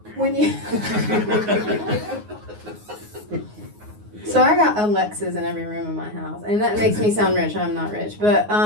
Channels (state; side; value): late; left; 9.5 ms